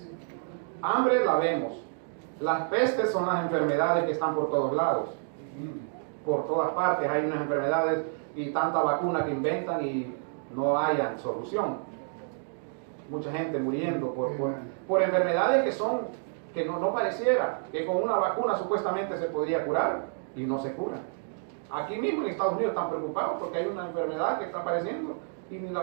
Hambre la vemos. Las pestes son las enfermedades que están por todos lados. Por todas partes hay unas enfermedades y tanta vacuna que inventan y no hayan solución. Mucha gente muriendo por enfermedades que no pareciera que con una vacuna supuestamente se podría curar y no se cura. Aquí mismo en Estados Unidos están preocupados porque hay una enfermedad que está apareciendo y ni la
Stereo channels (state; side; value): silent; left; digital silence